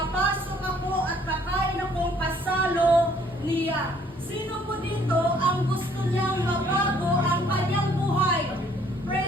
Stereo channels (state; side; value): normal; both; correlation 0.61